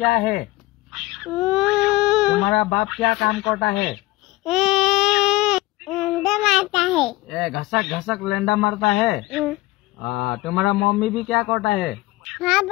है? तुम्हारा बाप क्या काम करता है? लेंडा मारता है। ए घसक घसक लेंडा मारता है। तुम्हारा मम्मी भी क्या करता है? हाँ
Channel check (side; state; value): right; quieter; 19.7 dB